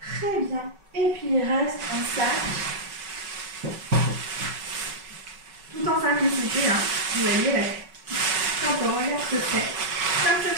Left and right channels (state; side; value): late; left; 5.3 ms